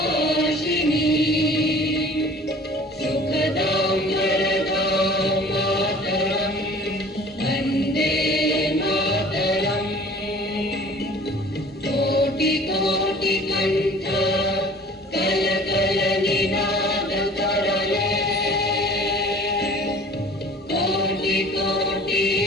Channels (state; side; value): normal; both; correlation 0.47